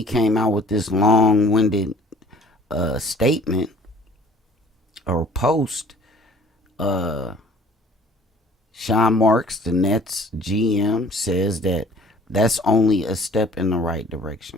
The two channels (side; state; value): both; normal; correlation 0.52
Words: came out with this long-winded statement or post, Sean Marks, the Nets GM, says that that's only a step in the right